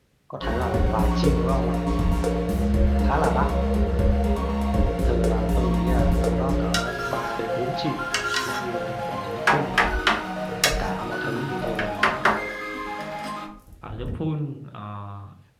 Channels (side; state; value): both; identical; correlation 1.00